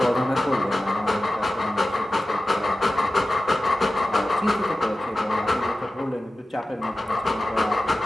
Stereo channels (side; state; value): both; normal; correlation 0.95